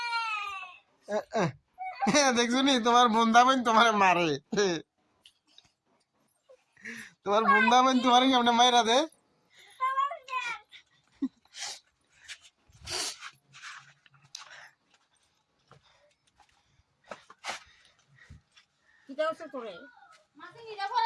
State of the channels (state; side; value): identical; both; correlation 1.00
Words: দেখছো নি, তোমার বন্ধা বোন তোমার মারে। তোমার বন্ধা বোন তোমার কেমনে মাইরা দে।